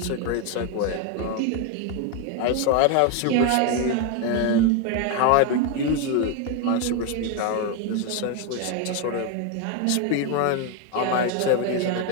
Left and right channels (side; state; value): both; different; correlation 0.02